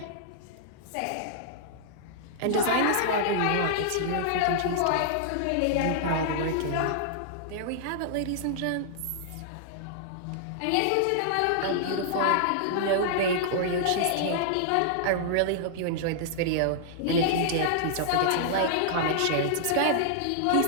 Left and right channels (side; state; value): both; different; correlation -0.01